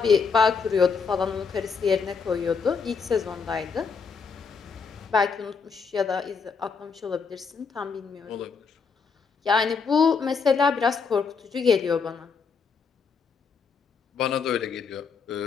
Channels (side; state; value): right; quieter; 5.4 dB